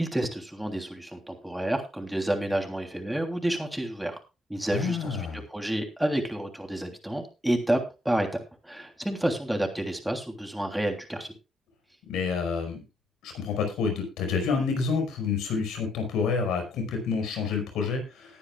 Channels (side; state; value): both; normal; correlation 0.75